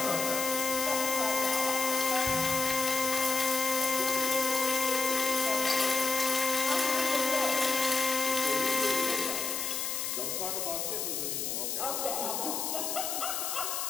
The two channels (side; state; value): left; noise; hiss, 2 dB below the sound